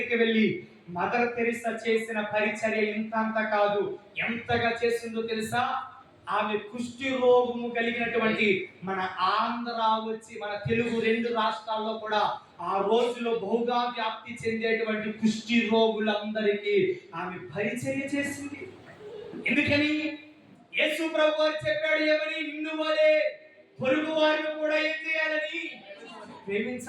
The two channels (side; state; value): both; identical; correlation 1.00